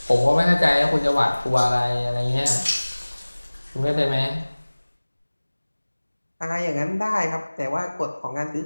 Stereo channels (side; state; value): both; inverted; correlation -1.00